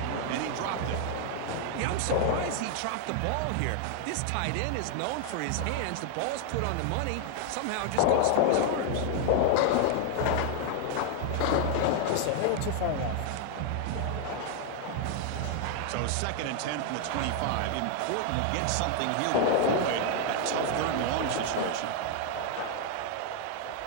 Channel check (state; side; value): different; both; correlation 0.00